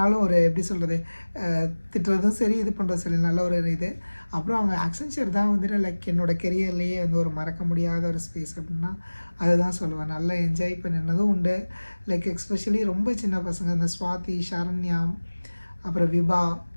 ஒரு எப்படி சொல்கிறது, திட்டுறதும் சரி இது பண்ணுறதும் சரி நல்ல ஒரு இது. அப்புறம் அவங்க ஆக்சென்ச்சர் தான் வந்துட்டு லைக் என்னோடய கெரியர்லேயே வந்து ஒரு மறக்க முடியாத ஒரு ஸ்பேஸ் அப்படின்னா அதுதான் சொல்லுவேன். நல்லா என்ஜாய் பண்ணினதும் உண்டு. லைக் எஸ்பெஷலி ரொம்ப சின்ன பசங்க இந்த ஸ்வாதி, சரண்யா, அப்புறம் விபா,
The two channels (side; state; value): both; inverted; correlation -1.00